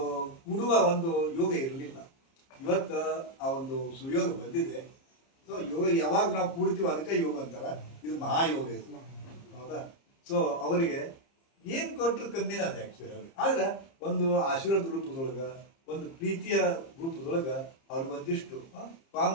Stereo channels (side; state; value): right; late; 30 ms